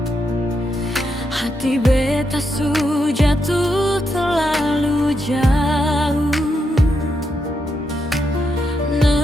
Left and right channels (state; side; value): normal; both; correlation 0.82